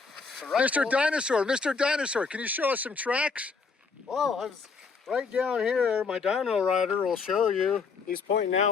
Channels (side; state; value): right; quieter; 4.9 dB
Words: Mr. Dinosaur, can you show us some tracks? Well, I was right down here. My dino rider will show you. He's pointing